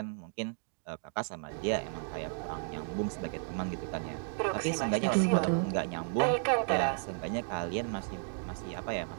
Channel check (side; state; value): left; silent; 55 dB below the other